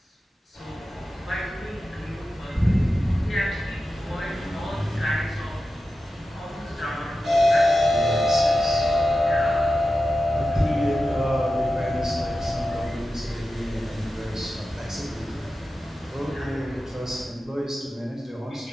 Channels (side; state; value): both; normal; correlation 0.92